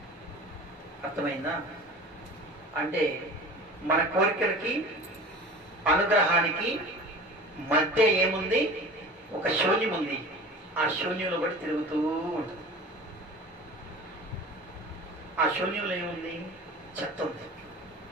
అర్థమైందా? అంటే మన కోరికలకి అనుగ్రహానికి మధ్య ఏముంది? ఒక శూన్యం ఉంది. ఆ శూన్యంలో బట్టి తిరుగుతూ ఉంటుంది. ఆ శూన్యంలో ఏముంది? చెత్త ఉంది.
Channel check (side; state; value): both; normal; correlation 0.38